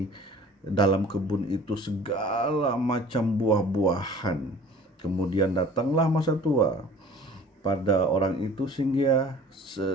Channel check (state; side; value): normal; both; correlation 0.47